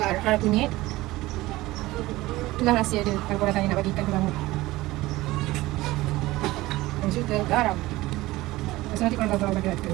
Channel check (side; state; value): left; quieter; 18.6 dB